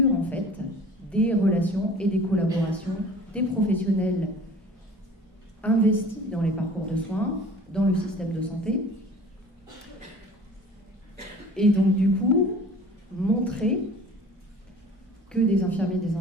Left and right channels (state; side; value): normal; both; correlation 0.45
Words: en fait des relations et des collaborations des professionnels investis dans les parcours de soins, dans le système de santé, et donc du coup montrer que des infirmiers et des